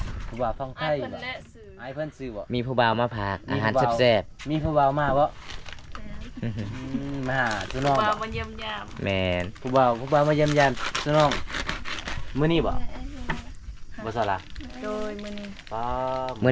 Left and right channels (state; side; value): identical; both; correlation 1.00